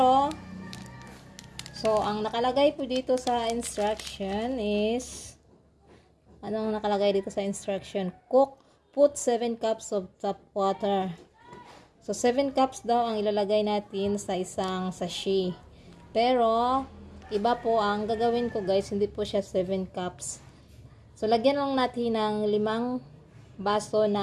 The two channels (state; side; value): identical; both; correlation 1.00